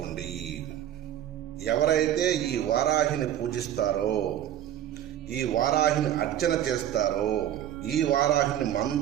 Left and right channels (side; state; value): left; quieter; 11.3 dB